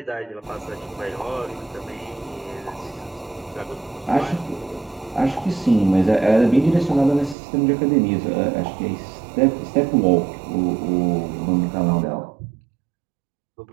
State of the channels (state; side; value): drops out; left; at 7.4 s